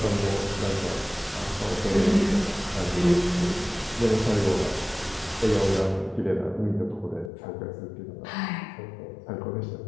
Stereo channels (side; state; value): right; drops out; at 7.3 s